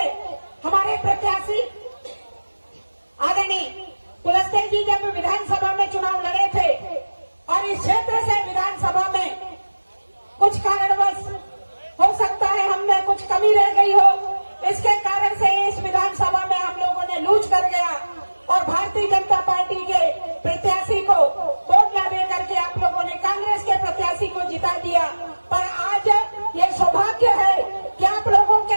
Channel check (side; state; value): both; inverted; correlation -1.00